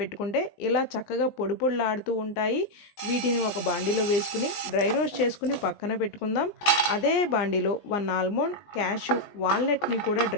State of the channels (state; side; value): late; right; 20 ms